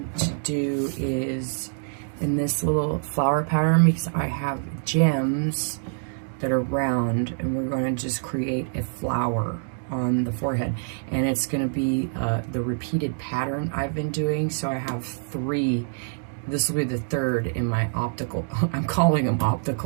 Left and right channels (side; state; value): left; silent; digital silence